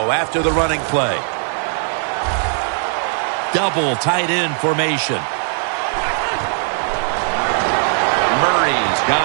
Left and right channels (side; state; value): left; silent; 58 dB below the other